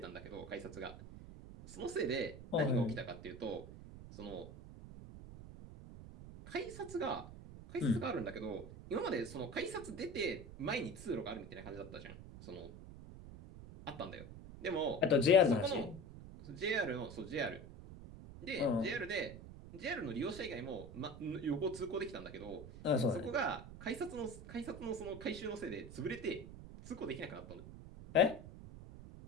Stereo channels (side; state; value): right; noise; rumble, 13 dB below the sound